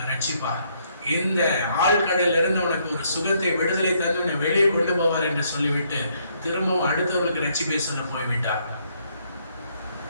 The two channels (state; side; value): inverted; both; correlation -0.71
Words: ரட்சிப்பா. இந்த ஆழ்கடலில் இருந்து உனக்கு ஒரு சுகத்தை, விடுதலை தந்து உன்னை வெளியே கொண்டு போவார் என்று சொல்லிவிட்டு திரும்பவும் அடுத்தவர்களுக்கு ரட்சிப்பை சொல்ல போய்விட்டார்.